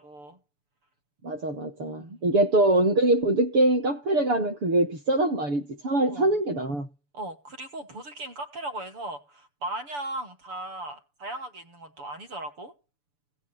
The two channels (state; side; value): late; left; 6.9 ms